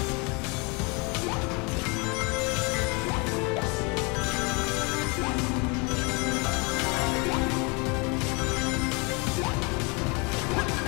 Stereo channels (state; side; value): quieter; right; 30.5 dB